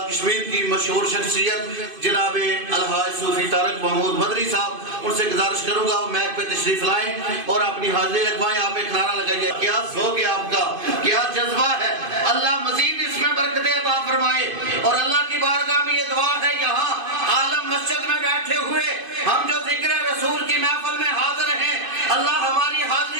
کشمیر کی مشہور شخصیت جناب الحاج صوفی طارق محمود مدری صاحب. ان سے گزارش کروں گا وہ میک پہ تشریف لائیں اور اپنی حاضری لگوائیں. آپ ایک نعرہ لگائیے. کیا ذوق ہے آپ کا, کیا جذبہ ہے. اللہ مزید اس میں برکتیں عطا فرمائے. اور اللہ کی بارگاہ میں یہ دعا ہے یہاں عالم مسجد میں بیٹھے ہوئے ہم جو ذکر رسول کی محفل میں حاضر ہیں اللہ ہماری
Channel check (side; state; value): left; late; 2.5 ms